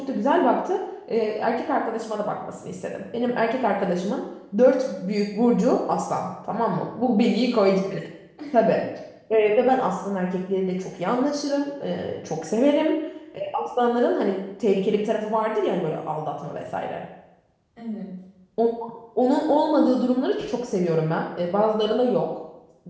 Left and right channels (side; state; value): both; identical; correlation 1.00